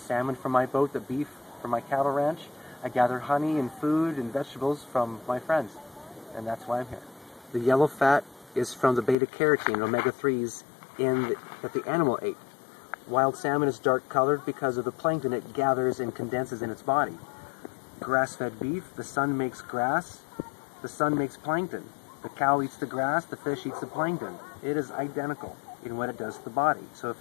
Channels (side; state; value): right; drops out; at 9.2 s